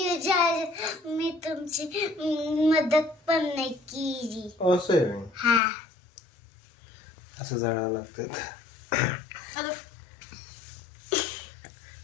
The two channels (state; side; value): drops out; right; at 5.6 s